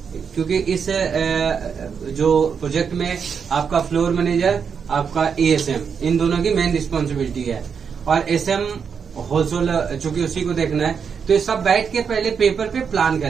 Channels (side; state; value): left; quieter; 6.5 dB